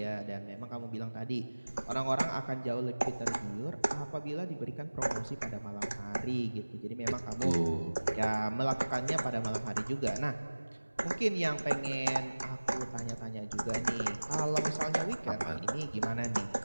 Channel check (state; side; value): inverted; both; correlation -1.00